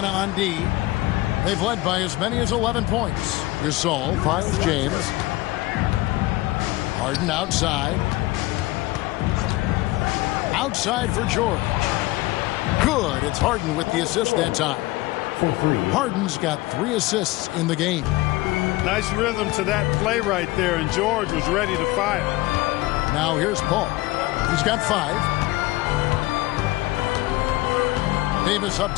on D. They've led by as many as 11 points. Gasol finds James. Harden outside. Outside for George. Good. It's Harden with the assist that time. For 3. Harden's got 3 assists in the game. Nice rhythm to that play right there, and George was ready to fire. Now here's Paul. He's got 5. Davis up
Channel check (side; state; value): right; quieter; 19.5 dB